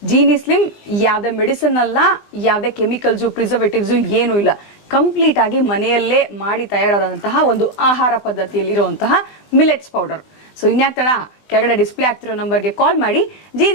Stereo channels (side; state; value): right; late; 20 ms